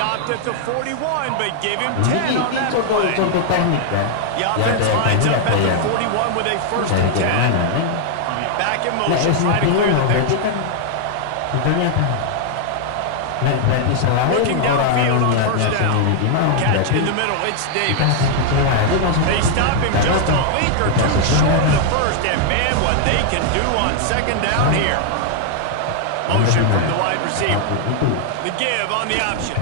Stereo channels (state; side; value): different; both; correlation 0.00